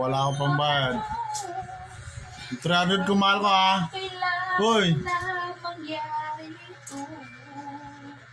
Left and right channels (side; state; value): both; identical; correlation 1.00